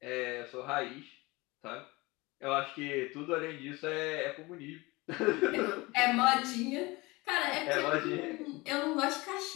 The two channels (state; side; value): quieter; right; 22.9 dB